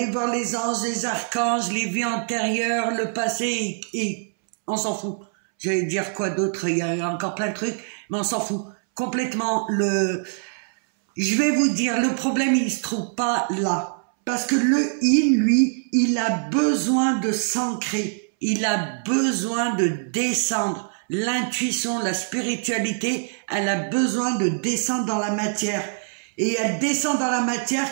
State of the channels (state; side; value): silent; left; 63 dB below the other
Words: voir les anges, les archanges, les vies antérieures, le passé, et on s'en fout. J'allais dire quoi d'autre, il y a encore plein de trucs, mais on s'en fout. Complètement, je vais vous dire, le problème, il se trouve pas là. Parce que le yin, lui, il a besoin de s'ancrer, il a besoin de descendre. L'intuition, la spiritualité, elle a besoin de descendre dans la matière. Et elle descend dans la